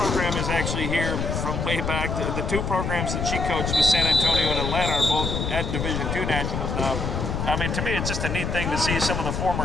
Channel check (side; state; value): left; noise; rumble, 2 dB below the sound